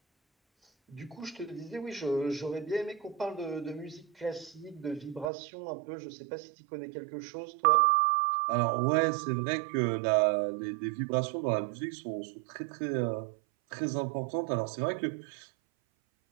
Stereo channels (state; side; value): drops out; left; at 5.3 s